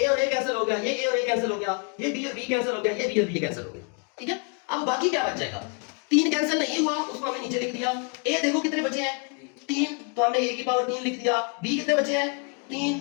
और a कैंसिल हो गया, ये a और a कैंसिल हो गया, ये b और b कैंसिल हो गया, ये b और b कैंसिल हो गया। ठीक है, अब बाकी क्या बच जाएगा? 3 कैंसिल नहीं हुआ, उसको हमने नीचे लिख दिया। a देखो कितने बचे हैं? 3, तो हमने a की पावर 3 लिख दिया। b कितने बचे हैं? 3,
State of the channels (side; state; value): right; quieter; 36.2 dB